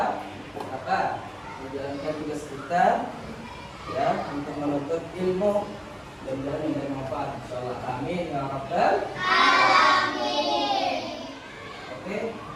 menjalankan tugas kita ya untuk menuntut ilmu dan yang bermanfaat. Insyaallah. Amin ya rabbal alamin. Oke,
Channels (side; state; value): both; identical; correlation 1.00